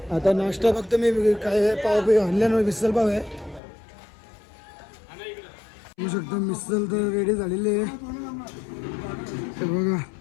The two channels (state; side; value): drops out; right; at 3.6 s